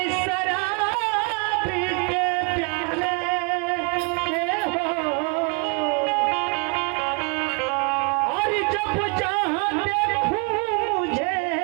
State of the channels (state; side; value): quieter; left; 33.0 dB